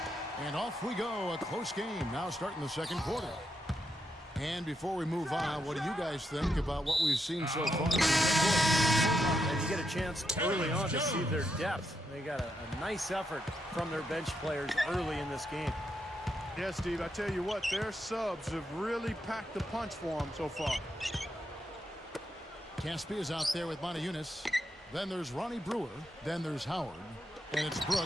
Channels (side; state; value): both; normal; correlation 0.82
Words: And off we go, a close game now starting the second quarter. And before we move on, what do you guys think about what we've seen so far? And you get a chance early on to see their depth. They got a nice effort from their bench players early in this game. Yeah, Steve, I tell you what, their subs have really packed the punch for them so far. Caspi is out there with Montejunas. Then there's Ronnie Brewer. Then there's Howard. And it's